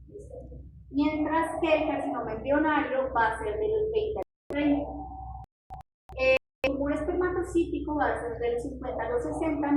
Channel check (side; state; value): both; identical; correlation 1.00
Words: ¿Listo? Mientras que el carcinoma embrionario va a ser de los 20 a los 30. El tumor espermatocítico va a ser de los 50 a los 60,